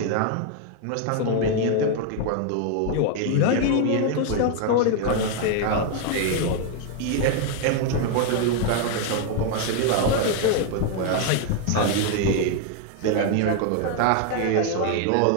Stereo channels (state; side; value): different; both; correlation 0.00